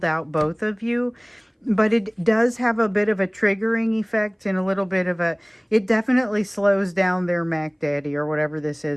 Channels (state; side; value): identical; both; correlation 1.00